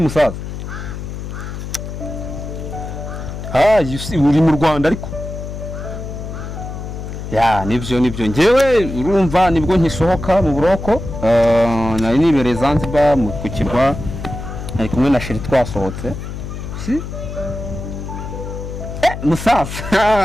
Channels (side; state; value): left; noise; hum, 8 dB below the sound